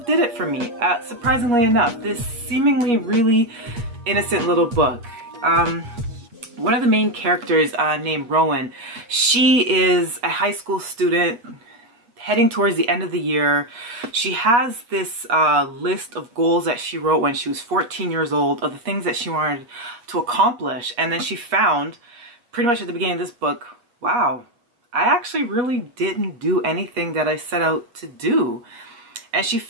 did it for me, surprisingly enough. This seemingly really innocent little book. One of the main characters named Rowan, she is a high school student heading towards the end of the year. She has this list of goals that she wrote when she was 14 years old of the things that she wanted to accomplish. And then she found pretty much at the beginning of this book, wow, I actually really didn't do anything that I set out to do. And she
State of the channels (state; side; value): late; left; 8.4 ms